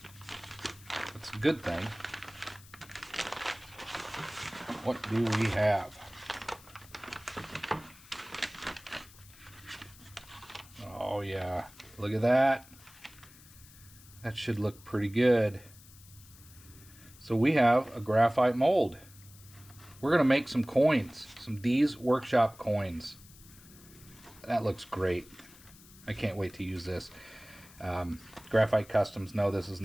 That's a good thing. What do we have? Oh yeah, look at that. That should look pretty good. So we have a graphite mold. We're gonna make some coins, some DEEZ workshop coins. That looks great. I can't wait to use this. Graphite Customs, no, this is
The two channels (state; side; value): noise; left; hiss, 22 dB below the sound